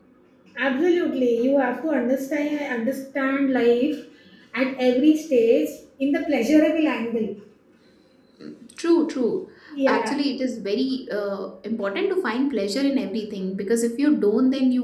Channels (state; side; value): identical; both; correlation 1.00